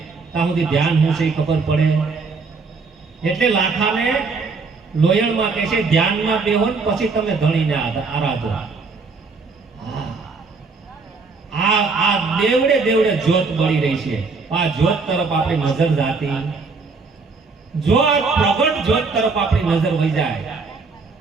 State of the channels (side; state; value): left; quieter; 4.4 dB